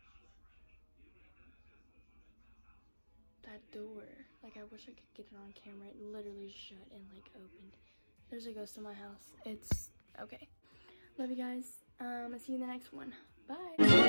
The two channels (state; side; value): inverted; both; correlation -1.00